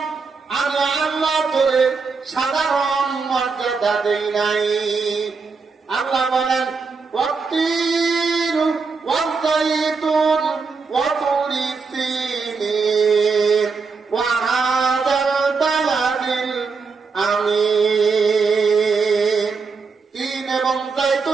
আমি আল্লাহ তোরে সাধারণ মর্যাদা দেই নাই। আল্লাহ বলেন, ওয়াত্তিন ওয়াযাইতুন ওয়া তুরি সিনিন ওয়া হাদাল বালাদিল আমিন। তিন এবং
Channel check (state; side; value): quieter; left; 4.8 dB